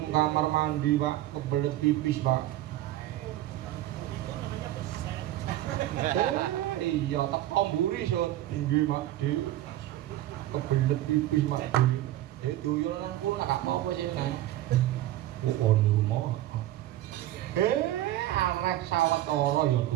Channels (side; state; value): left; quieter; 14.4 dB